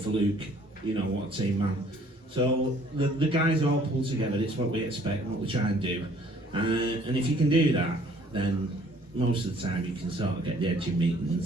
Luke, what a team man. So the guys all pull together. It's what we expect, what we try and do, and if you can do that, then most of the time you can sort of get the edge in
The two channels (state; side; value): normal; both; correlation 0.58